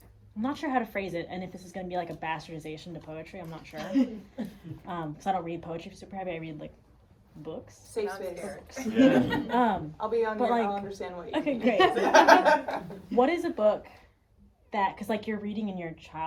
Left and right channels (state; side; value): identical; both; correlation 1.00